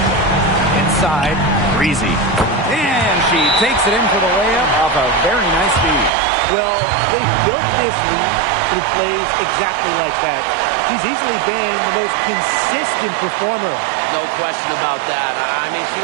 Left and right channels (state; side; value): drops out; left; at 6.1 s